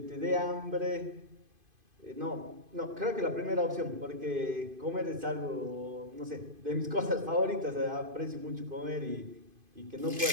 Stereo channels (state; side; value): late; left; 2.5 ms